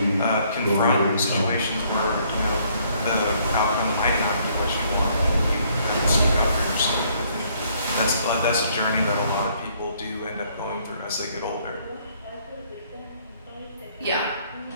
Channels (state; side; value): inverted; both; correlation -0.65